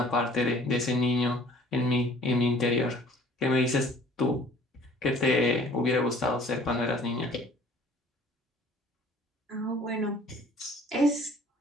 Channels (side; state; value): both; normal; correlation 0.52